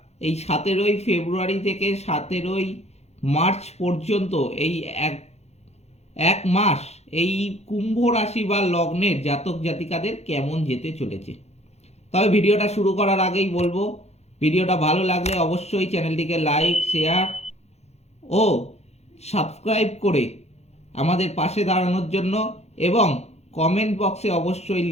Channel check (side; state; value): right; late; 0.31 ms